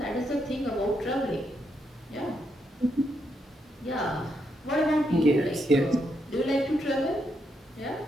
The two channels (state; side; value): normal; both; correlation 0.79